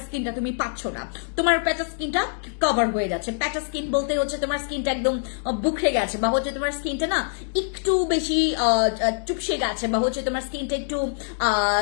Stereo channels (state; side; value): silent; right; digital silence